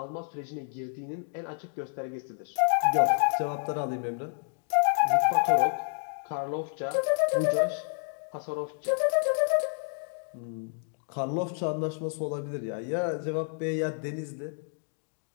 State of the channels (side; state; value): right; silent; 58 dB below the other